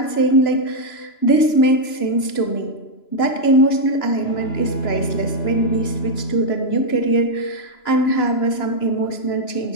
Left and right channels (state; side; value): late; right; 2.9 ms